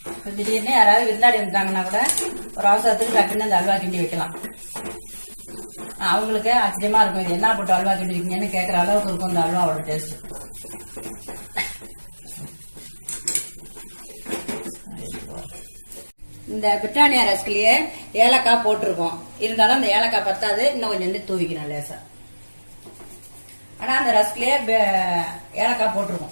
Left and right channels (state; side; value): inverted; both; correlation -1.00